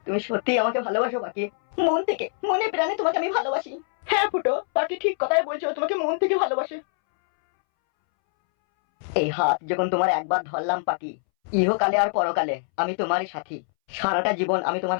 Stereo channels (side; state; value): right; silent; 62 dB below the other